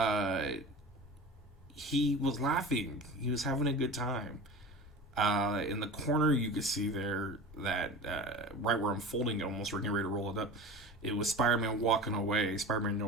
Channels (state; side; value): normal; both; correlation 0.34